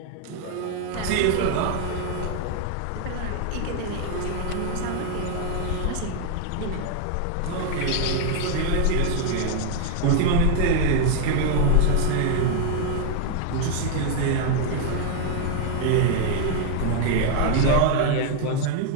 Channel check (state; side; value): different; both; correlation 0.00